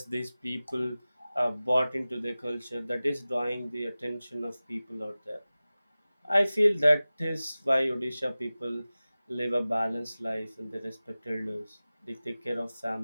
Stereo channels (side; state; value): both; inverted; correlation -0.97